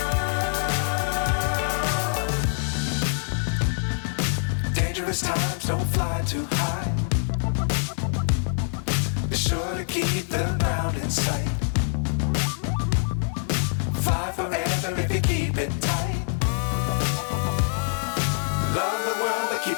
Times don't fly too high. Be sure to keep the ground in sight. Fly forever if you keep it tight. Love the world but keep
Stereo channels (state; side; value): silent; right; 62 dB below the other